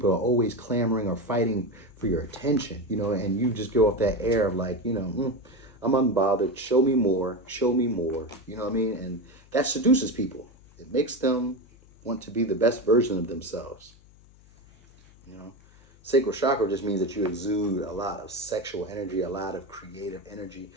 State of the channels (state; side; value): noise; left; hum, 26 dB below the sound